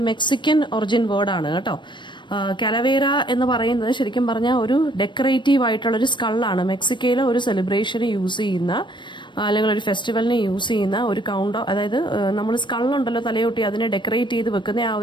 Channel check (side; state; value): right; late; 0.22 ms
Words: മെക്സിക്കൻ ഒറിജിൻ വേർഡാണ് കേട്ടോ. കലവേര എന്ന് പറയുന്നത് ശരിക്കും പറഞ്ഞാൽ ഒരു ഡെക്കറേറ്റീവ് ആയിട്ടുള്ളൊരു സ്കള്ളാണ്. മെക്സിക്കോയിലെ ഒരു സെലിബ്രേഷന് യൂസ് ചെയ്യുന്ന അല്ലെങ്കിൽ ഒരു ഫെസ്റ്റിവലിന് യൂസ് ചെയ്യുന്ന ഒരു അതായത് നമ്മൾ സ്കള്ളുണ്ടല്ലോ തലയൊട്ടി, അതിനെ ഡെക്കറേറ്റ് ചെയ്ത് വെക്കുന്ന ആ